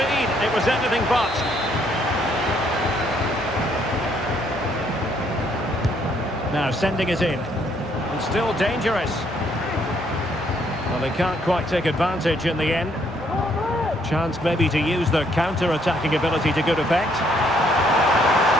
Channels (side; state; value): both; normal; correlation 0.69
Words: It was anything but. Now sending it in. And still dangerous. Well, they can't quite take advantage in the end. Chance maybe to use their counter-attacking ability to good effect.